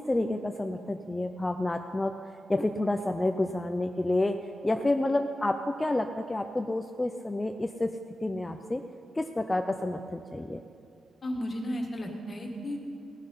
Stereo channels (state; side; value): normal; both; correlation 0.96